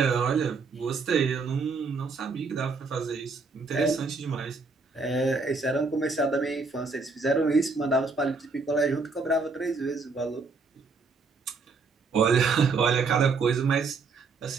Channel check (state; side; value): quieter; left; 4.3 dB